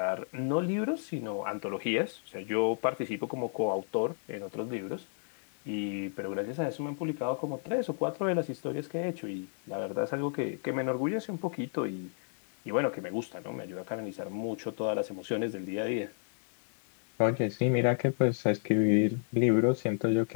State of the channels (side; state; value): right; silent; 56 dB below the other